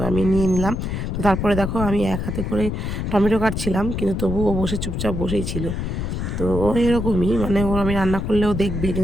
আমি নিয়ে নিলাম। তো তারপরে দেখো আমি এক হাতে করে টমেটো কাটছিলাম, কিন্তু তবুও ও বসে চুপচাপ বসেই ছিল। তো ও এরকমই, মানে ও আমি রান্না করলেও দেখবে,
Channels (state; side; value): noise; left; rumble, 3 dB below the sound